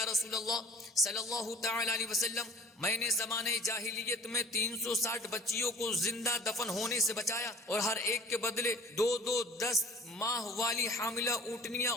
رسول اللہ صلی اللہ تعالی علیہ وسلم میں نے زمانے جاہلیت میں 360 بچیوں کو زندہ دفن ہونے سے بچایا اور ہر ایک کے بدلے 10 ماہ والی حاملہ اونٹنیاں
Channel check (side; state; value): both; normal; correlation 0.47